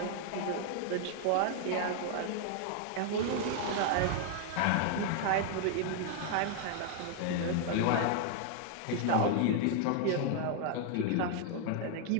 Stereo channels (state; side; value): different; both; correlation 0.00